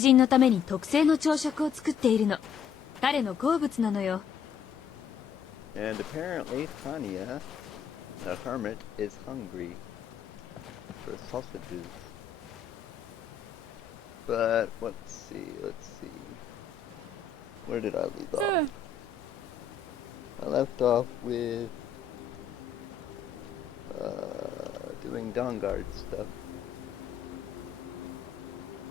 のために特製の朝食を作っているの。彼の好物なのよ。And apparently Tanya, the hermit, is hungry for sausages. But let's see. Where did I leave off? I left off with doing Dawnguard stuff.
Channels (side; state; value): right; quieter; 7.2 dB